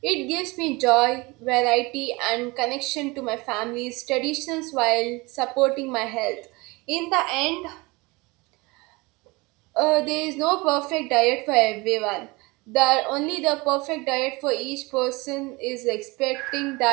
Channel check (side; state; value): left; quieter; 24.4 dB